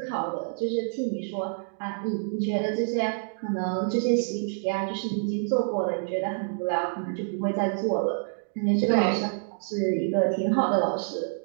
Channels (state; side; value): silent; left; digital silence